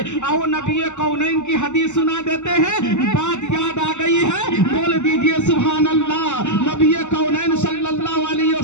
آؤ نبی کونین کی حدیث سنا دیتے ہیں، بات یاد آ گئی ہے، بول دیجئے سبحان اللہ۔ نبی کونین صلی اللہ علیہ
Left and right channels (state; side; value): late; right; 0.83 ms